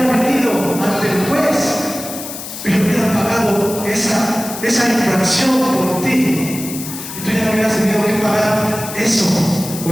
venido ante el juez y le hubiera pagado esa infracción por ti. Y tú ya no hubieras tenido que pagar eso, o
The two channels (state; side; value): noise; left; hiss, 10 dB below the sound